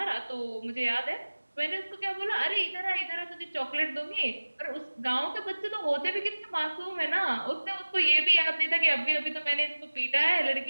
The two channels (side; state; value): both; inverted; correlation -1.00